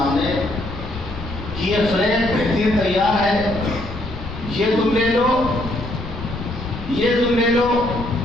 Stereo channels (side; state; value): left; noise; rumble, 10 dB below the sound